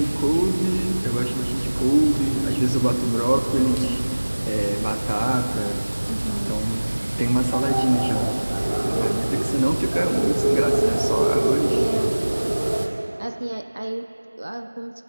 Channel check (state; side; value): inverted; both; correlation -1.00